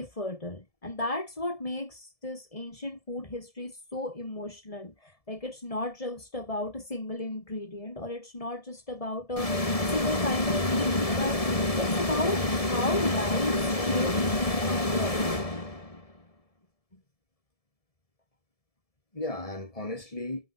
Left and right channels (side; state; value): right; late; 1.7 ms